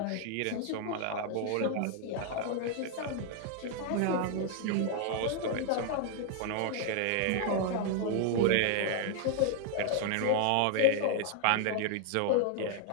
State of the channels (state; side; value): different; both; correlation 0.00